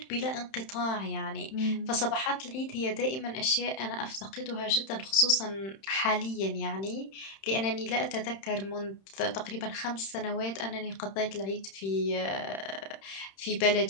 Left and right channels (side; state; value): right; late; 31 ms